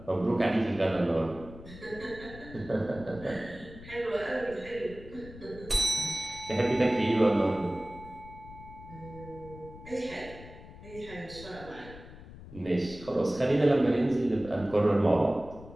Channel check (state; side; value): noise; left; rumble, 16 dB below the sound